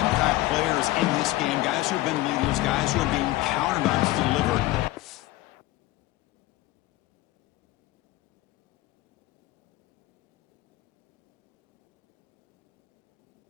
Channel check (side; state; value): right; quieter; 17.8 dB